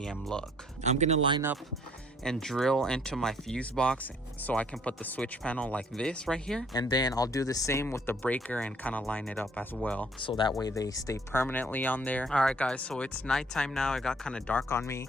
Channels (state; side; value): normal; both; correlation 0.60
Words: look. I'm gonna line up and drill into my fuse box so I can put the switch panel like this right here, and then I'll do the same with the breaker and kind of line it up as well, so that way they stay permanently on there. All right, guys, so it's nighttime now. It got kind of dark on me.